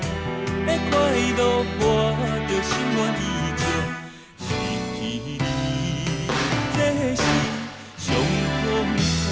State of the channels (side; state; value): both; identical; correlation 1.00